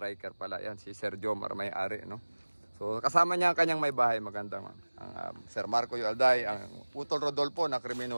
pala yan. Si Sir Jomar may-ari, no? So, kasama niya ang kanyang may bahay. Magandang Sir Marco Yualday, ang Utol Rodolfo na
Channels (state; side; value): inverted; both; correlation -1.00